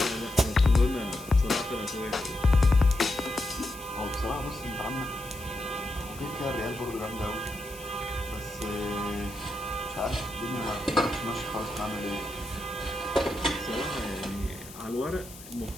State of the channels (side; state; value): left; noise; hiss, 17 dB below the sound